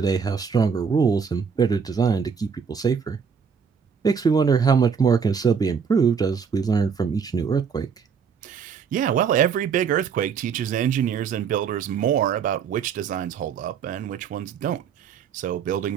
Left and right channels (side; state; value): left; quieter; 6.4 dB